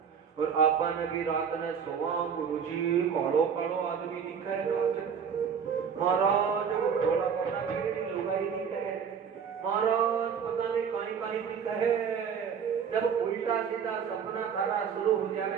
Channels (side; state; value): left; quieter; 7.0 dB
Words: और आपन भी रात ने सोवा गुरुजी कालो कालो आदमी दिखे रात महाराज थोड़ा कोटा मेरी लुगाई दिखे महाराज पता नहीं कहीं कहीं दिखे जब उल्टा सीधा सपना थारा शुरू हो जावे